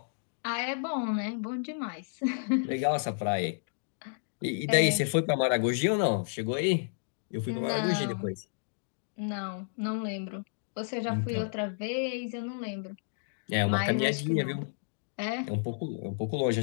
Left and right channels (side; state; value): right; silent; digital silence